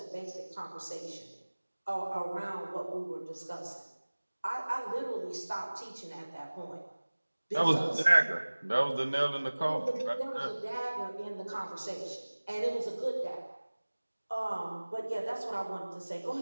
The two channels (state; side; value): inverted; both; correlation -1.00